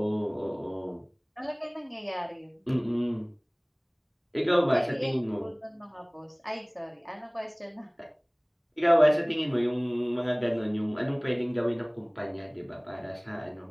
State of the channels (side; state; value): both; identical; correlation 1.00